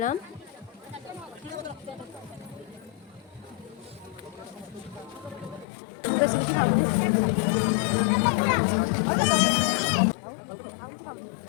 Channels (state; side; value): drops out; right; at 5.7 s